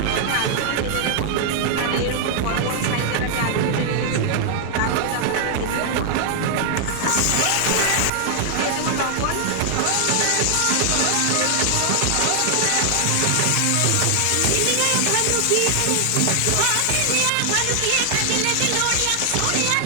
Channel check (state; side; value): different; both; correlation 0.00